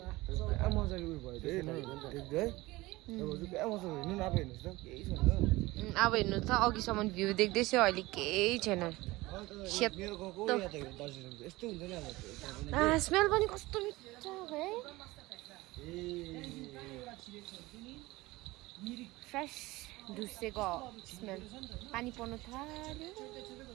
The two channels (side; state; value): left; quieter; 20.2 dB